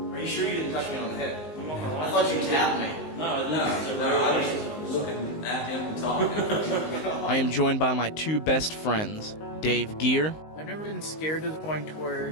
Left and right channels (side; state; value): right; late; 19 ms